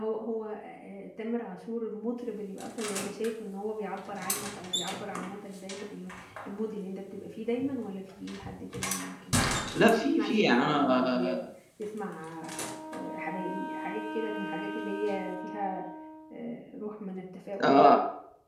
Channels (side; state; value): both; identical; correlation 1.00